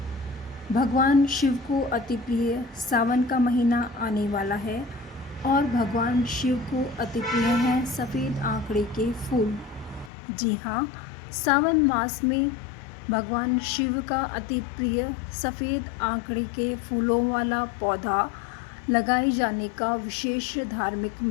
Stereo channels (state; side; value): drops out; right; at 10.1 s